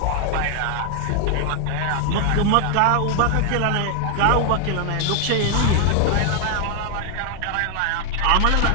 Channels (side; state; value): both; different; correlation 0.00